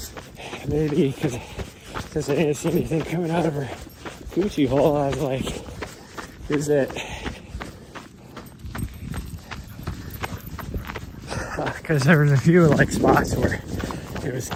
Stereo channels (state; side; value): identical; both; correlation 1.00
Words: maybe because I didn't see anything coming out of her coochie hole, I was like, is it because there was a few like spots where it was